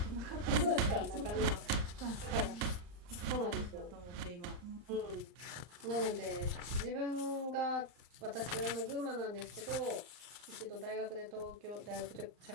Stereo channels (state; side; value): late; left; 39 ms